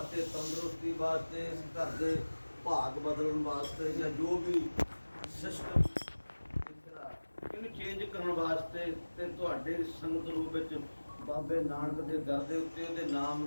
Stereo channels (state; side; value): inverted; both; correlation -1.00